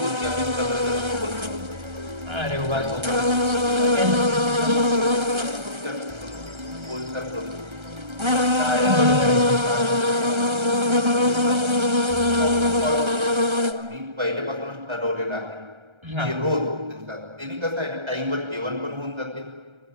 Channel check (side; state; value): left; late; 1.3 ms